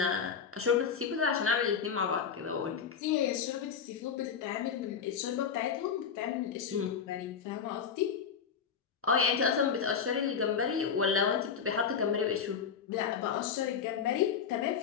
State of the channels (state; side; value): quieter; right; 6.8 dB